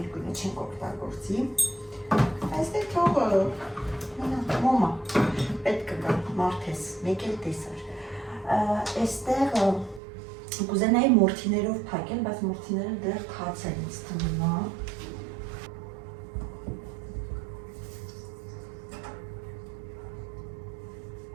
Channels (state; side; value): drops out; left; at 10.0 s